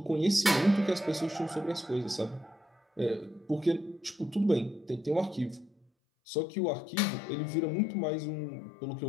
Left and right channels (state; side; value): drops out; right; at 5.9 s